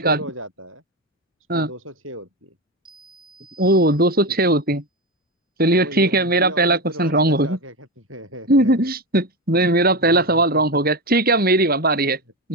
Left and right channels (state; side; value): normal; both; correlation 0.17